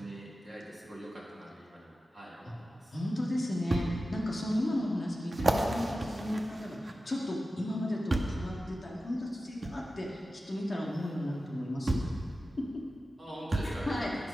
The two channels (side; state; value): both; normal; correlation 0.94